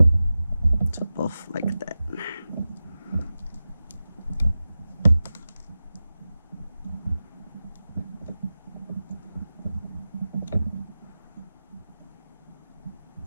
top off like that.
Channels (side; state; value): both; inverted; correlation -0.94